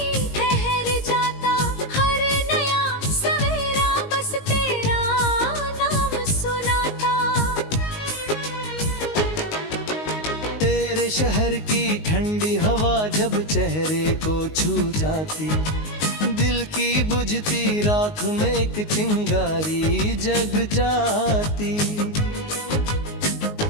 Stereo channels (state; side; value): late; right; 19 ms